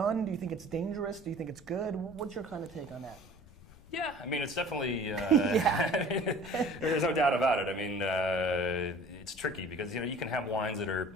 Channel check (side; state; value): left; noise; rumble, 22 dB below the sound